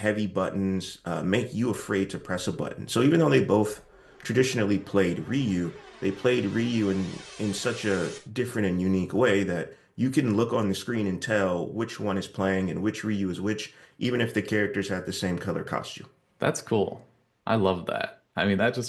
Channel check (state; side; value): identical; both; correlation 1.00